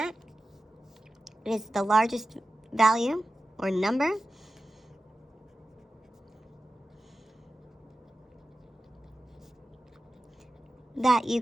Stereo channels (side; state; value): both; normal; correlation 0.94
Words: is the largest value or number that you